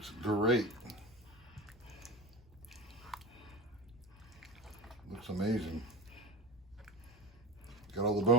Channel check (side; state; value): both; normal; correlation 0.28